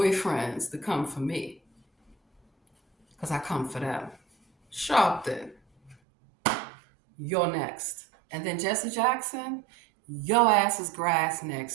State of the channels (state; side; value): drops out; left; at 6.0 s